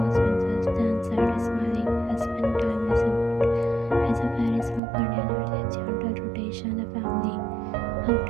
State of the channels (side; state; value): left; drops out; at 4.8 s